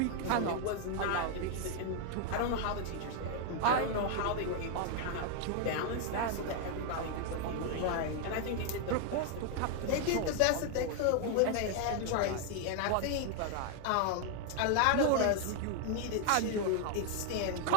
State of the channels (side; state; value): both; different; correlation 0.00